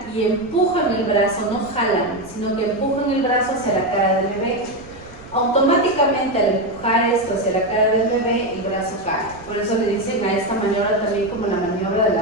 y empujan el brazo, no jalan, sino que empujan el brazo hacia la cara del bebé. Automáticamente al empujar esto hacia la cara del bebé, el brazo cae. Por eso le dicen a esta maniobra también como la maniobra de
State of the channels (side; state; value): right; noise; rumble, 20 dB below the sound